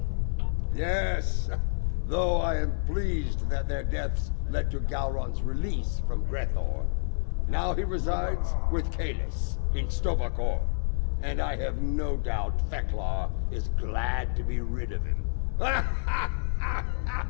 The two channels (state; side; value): silent; right; digital silence